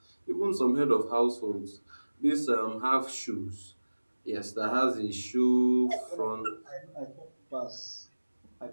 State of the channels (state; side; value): inverted; both; correlation -1.00